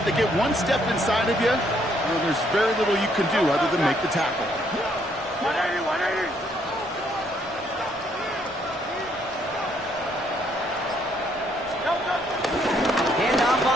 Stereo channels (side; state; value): both; normal; correlation 0.70